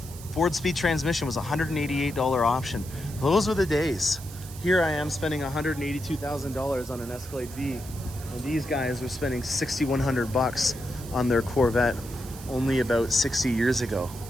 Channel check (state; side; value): noise; right; hiss, 16 dB below the sound